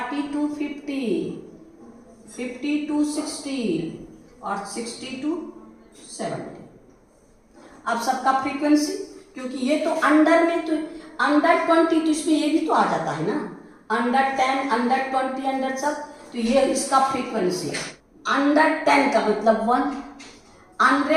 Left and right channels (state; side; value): identical; both; correlation 1.00